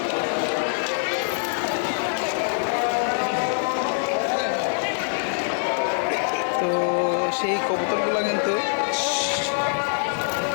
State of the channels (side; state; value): right; silent; 63 dB below the other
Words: তো সেই কবুতরগুলো কিন্তু